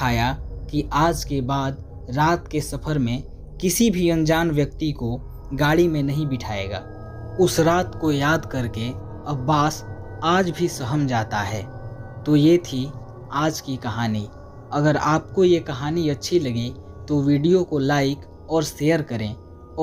कि आज के बाद रात के सफ़र में किसी भी अनजान व्यक्ति को गाड़ी में नहीं बिठाएगा। उस रात को याद करके अब्बास आज भी सहम जाता है। तो ये थी आज की कहानी। अगर आपको ये कहानी अच्छी लगी तो वीडियो को लाइक और शेयर करें,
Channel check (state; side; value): identical; both; correlation 1.00